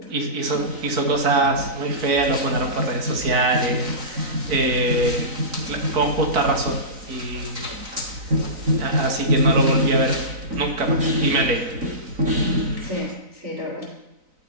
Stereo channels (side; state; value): left; late; 3.9 ms